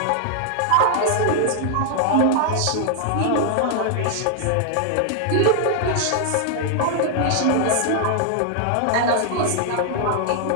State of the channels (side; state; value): both; different; correlation 0.00